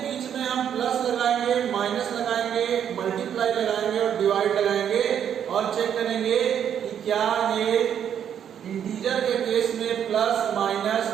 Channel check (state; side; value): quieter; left; 9.0 dB